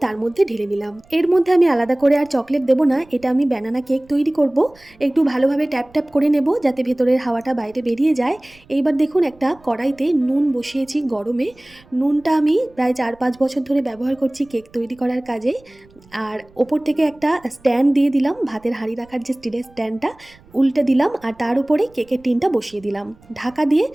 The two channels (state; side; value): noise; right; rumble, 28 dB below the sound